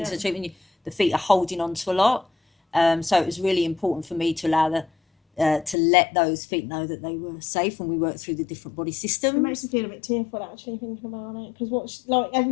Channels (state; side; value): drops out; right; at 5.8 s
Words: the treatment, the feet are holding onto a lot. So it was really important for me to allow to let those feet know that they were safe when we worked through the different body systems. It makes me feel a bit tearful actually thinking about it, because